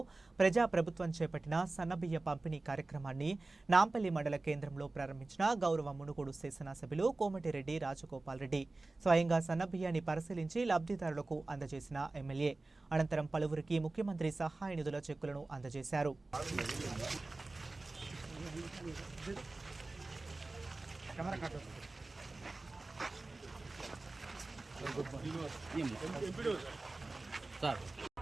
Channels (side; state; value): left; quieter; 3.2 dB